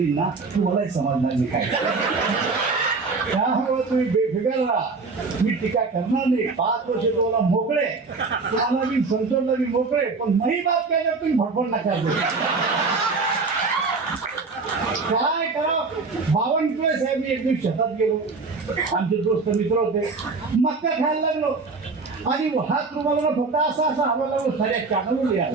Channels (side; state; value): left; quieter; 4.2 dB